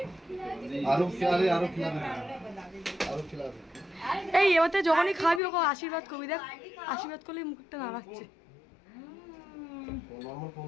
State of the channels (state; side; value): drops out; right; at 5.4 s